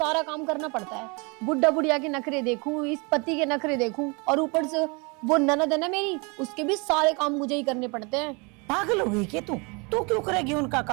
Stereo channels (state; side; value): quieter; left; 30.5 dB